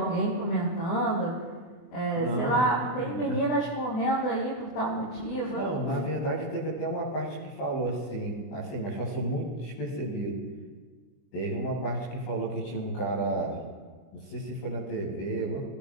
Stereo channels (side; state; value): right; late; 24 ms